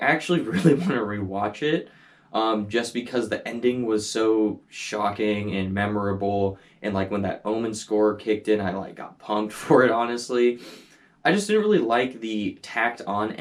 really want to rewatch it, just because the ending was so shocking and memorable, and like when that Omen score kicked in, I like got pumped for it, honestly. I just didn't really like the tacked on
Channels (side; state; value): both; identical; correlation 1.00